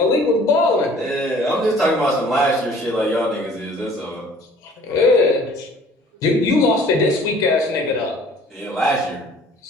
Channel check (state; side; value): normal; both; correlation 0.52